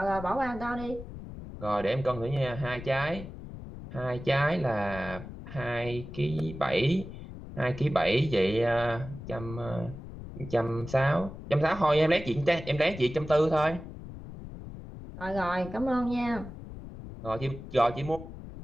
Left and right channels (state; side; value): noise; left; rumble, 12 dB below the sound